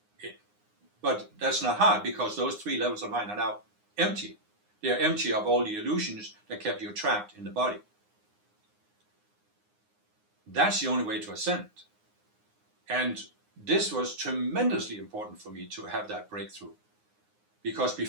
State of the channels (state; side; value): late; left; 9.7 ms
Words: But that's not hard, because those 3 levels of mind are now empty. They are empty of all the illusions that kept you trapped in the body. That's the only way to ascend. And this was tremendously important for me to have that breakthrough. Because